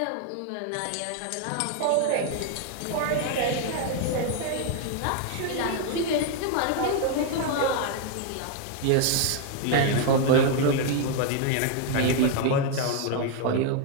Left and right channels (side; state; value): both; different; correlation 0.00